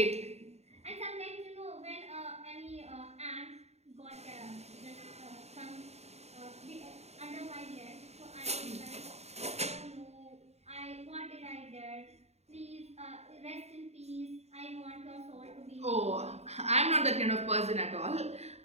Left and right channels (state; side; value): late; left; 0.31 ms